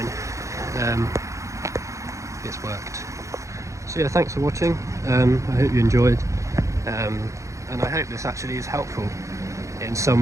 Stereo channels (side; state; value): left; late; 0.15 ms